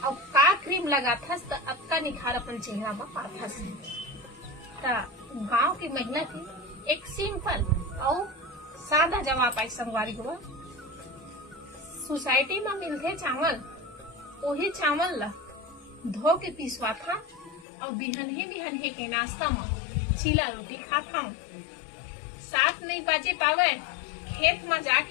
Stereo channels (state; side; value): drops out; right; at 17.7 s